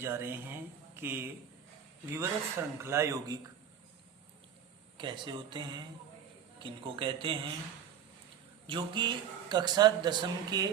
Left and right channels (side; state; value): left; quieter; 8.5 dB